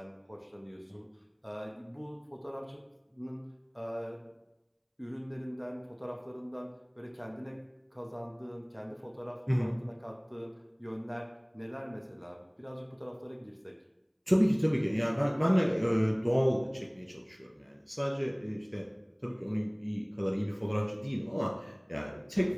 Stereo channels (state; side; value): identical; both; correlation 1.00